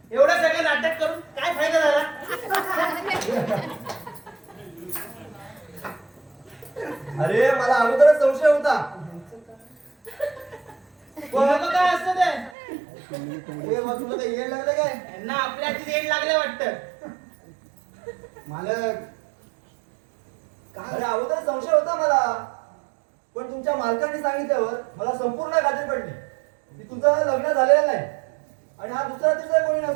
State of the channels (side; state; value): left; drops out; at 12.5 s